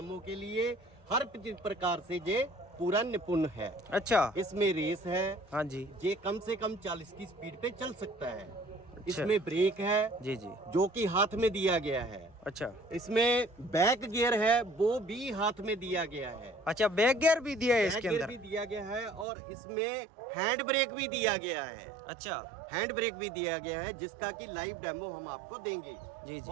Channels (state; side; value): drops out; left; at 19.2 s